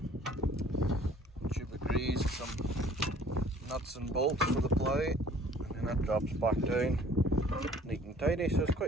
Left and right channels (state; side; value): normal; both; correlation 0.53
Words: tube of grease, some nuts and bolts for the plough, and then that drops back down, neat and tidy, so it's